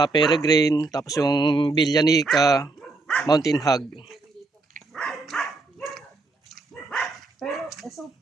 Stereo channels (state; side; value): quieter; left; 3.4 dB